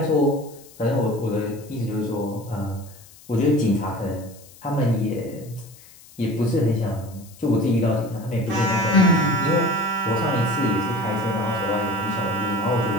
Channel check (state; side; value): noise; left; hiss, 23 dB below the sound